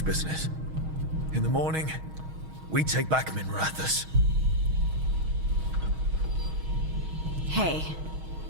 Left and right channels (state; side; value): late; left; 6.3 ms